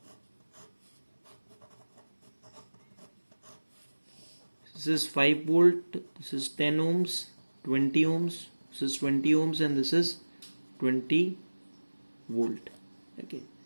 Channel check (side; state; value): both; inverted; correlation -1.00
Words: This is 5 volt, this is 10 ohms, 20 ohms, this is 20 ohms, and this is 20 volt. Okay,